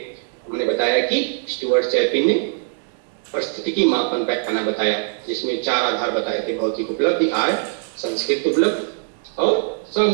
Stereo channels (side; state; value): left; silent; 65 dB below the other